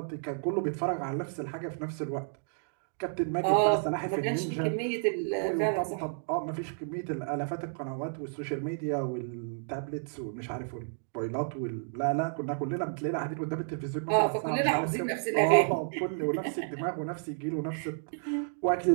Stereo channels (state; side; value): silent; left; digital silence